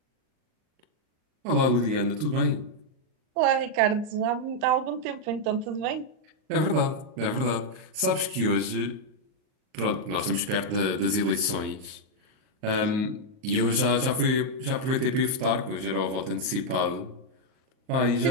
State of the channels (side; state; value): left; late; 38 ms